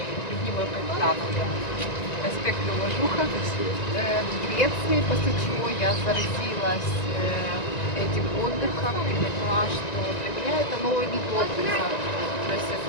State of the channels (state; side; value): late; right; 1.9 ms